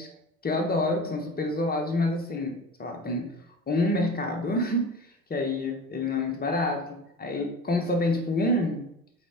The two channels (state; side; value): normal; both; correlation 0.35